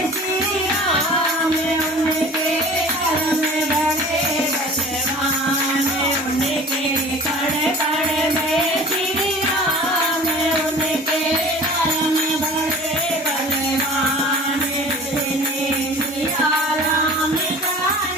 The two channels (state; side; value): normal; both; correlation 0.43